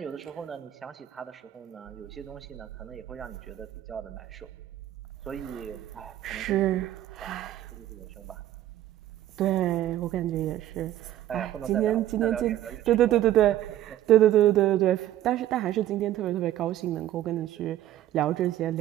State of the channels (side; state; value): left; quieter; 13.0 dB